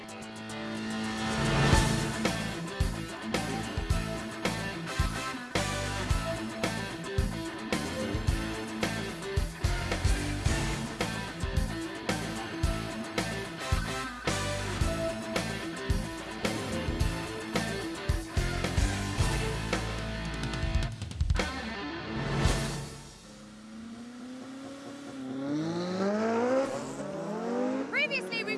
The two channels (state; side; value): identical; both; correlation 1.00